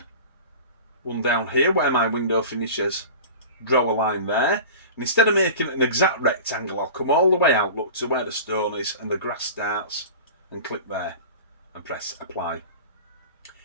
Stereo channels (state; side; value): inverted; both; correlation -0.36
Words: one down here where my window finishes, draw a line there, and instead of making an exact rectangle, I'll come all the way out, look to where the stone is and the grass starts, and click there, and press apply.